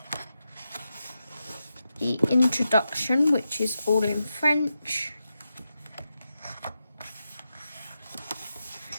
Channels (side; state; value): both; inverted; correlation -0.88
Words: the introduction, which is all in French.